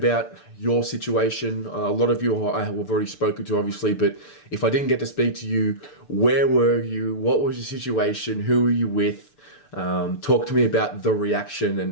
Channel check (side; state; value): right; late; 6.8 ms